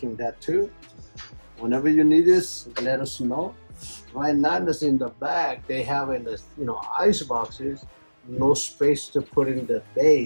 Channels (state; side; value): inverted; both; correlation -1.00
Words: that too. Whenever you need this, let us know. Right now, this in the back, they have in the ice boxes, no space to put in the